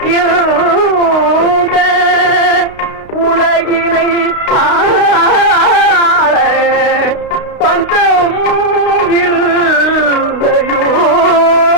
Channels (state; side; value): late; right; 32 ms